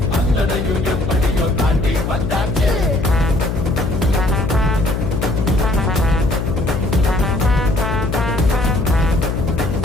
அத்தனையும் எப்படியோ தாண்டி வந்தாச்சு.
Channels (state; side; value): noise; left; hum, 2 dB below the sound